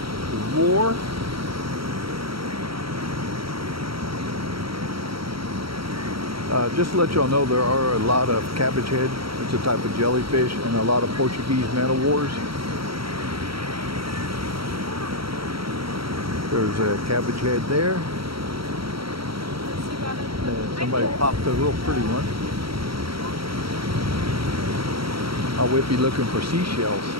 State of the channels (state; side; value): late; left; 0.75 ms